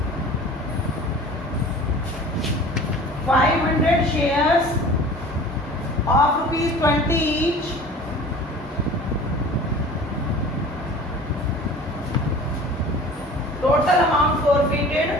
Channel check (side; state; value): both; normal; correlation 0.42